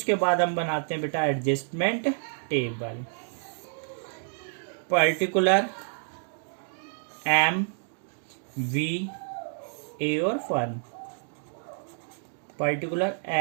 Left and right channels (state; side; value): silent; left; digital silence